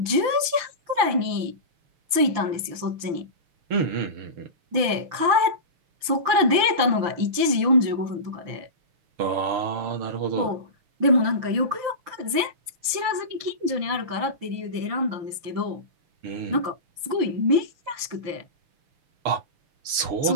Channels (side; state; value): left; late; 5.9 ms